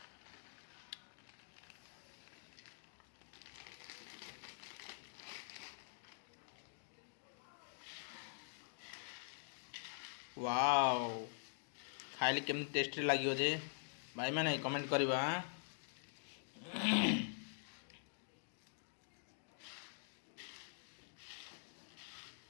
वाओ खाइले केमती टेस्टी लगे जे भाई मैंने कमेंट करवा।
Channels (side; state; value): right; silent; digital silence